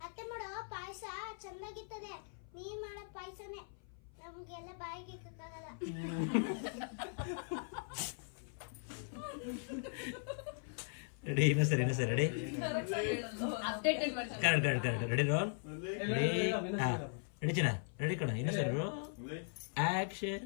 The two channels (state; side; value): silent; right; 52 dB below the other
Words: ಅತ್ತೆ ಮಾಡೋ ಪಾಯಸ ಚಂದಾಗಿರ್ತದೆ, ನೀನ್ ಮಾಡೋ ಪಾಯಸನೇ ನಮ್ಗೆಲ್ಲ ಬಾಯಿಗೆ ಇಕ್ಕಾಗಲ್ಲ. ರೆಡಿ? ಇನ್ನೂ ಸರಿ ready. Correct ready roll. Ready ಚಿನ್ನ, ರೆಡಿ ಕಣ. ಇನ್ನೂ ಸರಿ ಆಕ್ಷನ್.